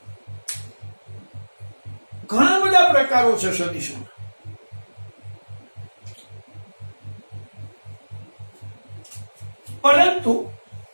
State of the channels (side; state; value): both; inverted; correlation -1.00